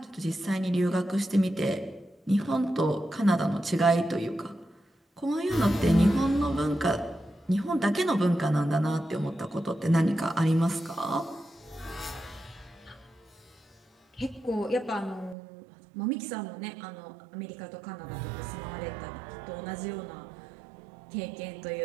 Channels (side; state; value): left; drops out; at 15.4 s